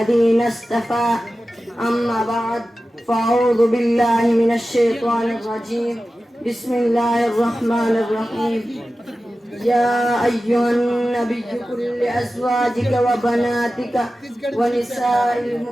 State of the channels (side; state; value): both; normal; correlation 0.95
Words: اصطفى أما بعد فأعوذ بالله من الشيطان الرجيم بسم الله الرحمن الرحيم يا أيها النبي قل لأزواجك وبناتك ونساء